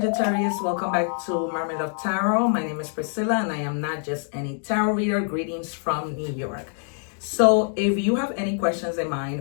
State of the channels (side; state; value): right; silent; 57 dB below the other